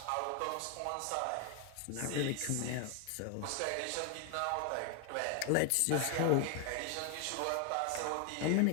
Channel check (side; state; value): both; different; correlation 0.00